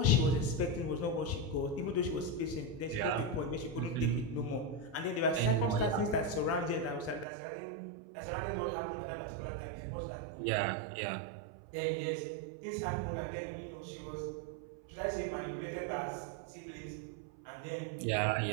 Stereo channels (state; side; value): drops out; left; at 7.2 s